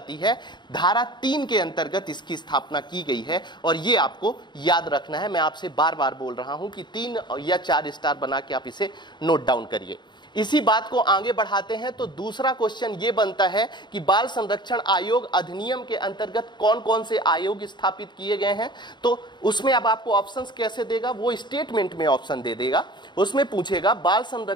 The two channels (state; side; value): late; right; 0.22 ms